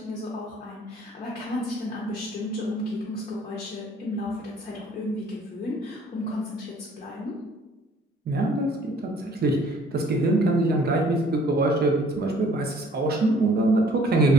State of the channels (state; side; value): normal; both; correlation 0.57